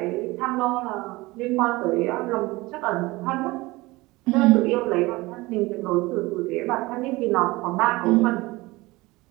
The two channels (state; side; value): quieter; left; 21.3 dB